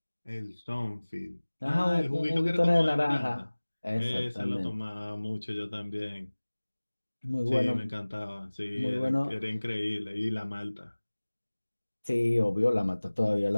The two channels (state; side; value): inverted; both; correlation -1.00